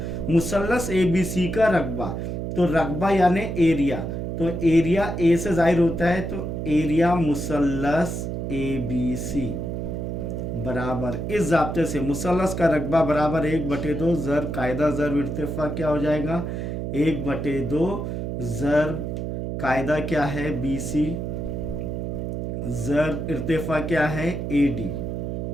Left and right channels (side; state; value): right; noise; hum, 4 dB below the sound